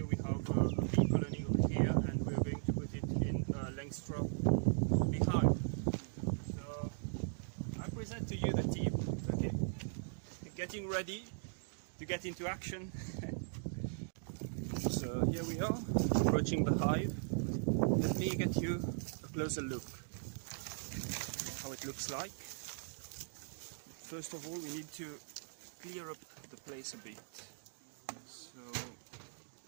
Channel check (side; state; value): left; silent; digital silence